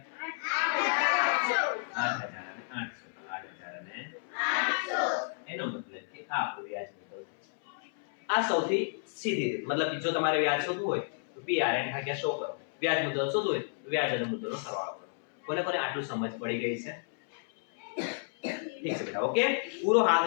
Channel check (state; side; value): silent; right; 57 dB below the other